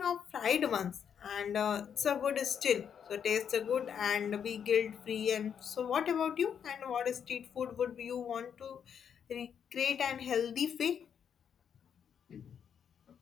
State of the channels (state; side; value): quieter; right; 7.9 dB